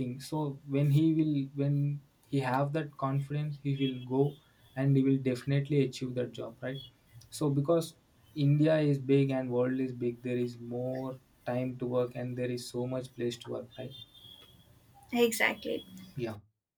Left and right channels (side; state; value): both; identical; correlation 1.00